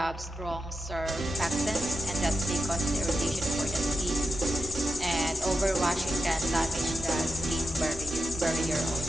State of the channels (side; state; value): both; normal; correlation 0.90